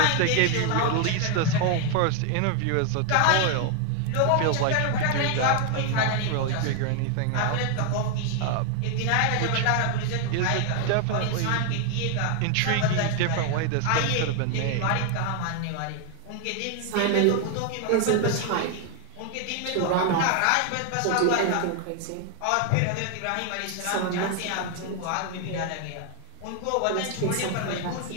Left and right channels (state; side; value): different; both; correlation 0.01